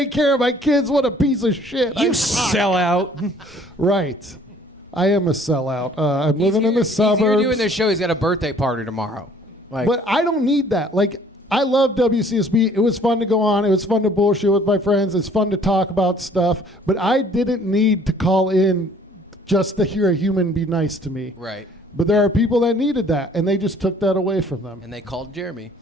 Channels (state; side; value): normal; both; correlation 0.57